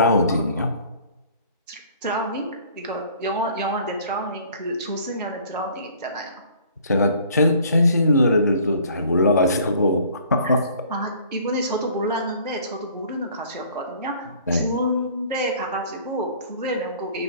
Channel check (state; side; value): inverted; both; correlation -0.53